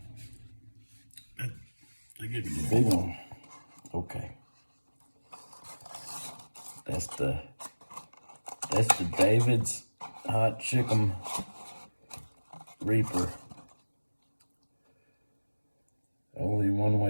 I give you the big one. Okay. That's the David's Hot Chicken Reaper. Only one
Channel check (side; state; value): both; inverted; correlation -1.00